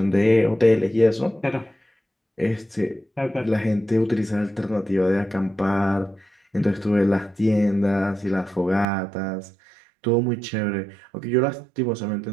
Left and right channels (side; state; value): left; drops out; at 8.8 s